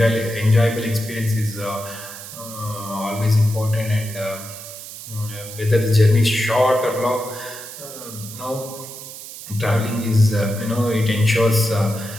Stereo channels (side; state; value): right; noise; hiss, 13 dB below the sound